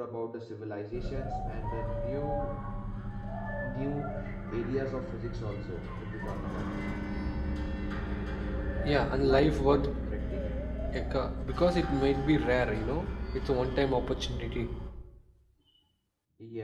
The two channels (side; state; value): both; identical; correlation 1.00